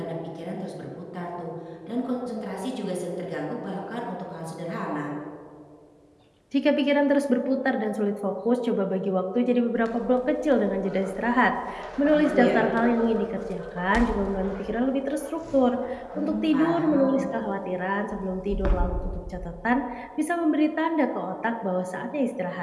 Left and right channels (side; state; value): both; identical; correlation 1.00